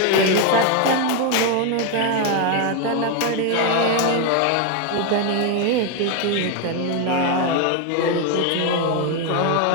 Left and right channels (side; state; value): both; different; correlation 0.01